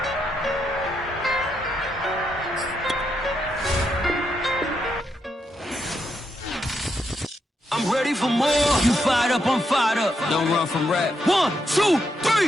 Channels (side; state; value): both; normal; correlation 0.81